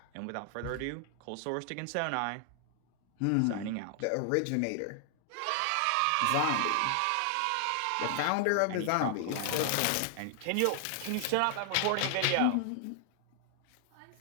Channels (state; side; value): different; both; correlation 0.00